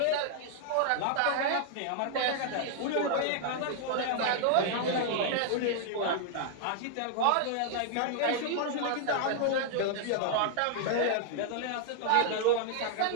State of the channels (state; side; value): different; both; correlation 0.00